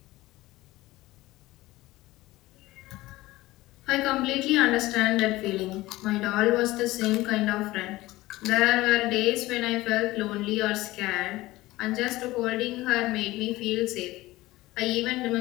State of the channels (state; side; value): quieter; right; 18.4 dB